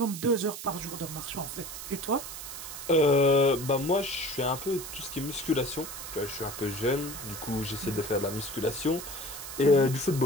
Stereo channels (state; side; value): noise; right; hiss, 9 dB below the sound